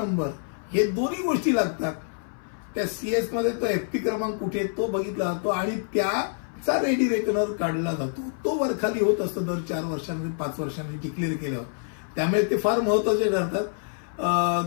हे दोन्ही गोष्टी लागतात. त्या सीएस मध्ये तो एफपी क्रमांक कुठे तो बघितला जातो आणि त्याचा रेडी रेकनर काढला जातो. तो वरखाली होत असतो दर 4 वर्षांनी 5 वर्षांनी डिक्लेअर केल्यावर. त्यामुळे ते फार महत्वाचे ठरतात.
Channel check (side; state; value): right; silent; 58 dB below the other